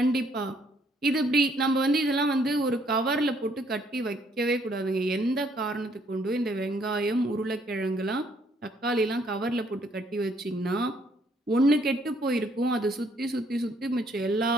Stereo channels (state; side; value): normal; both; correlation 0.67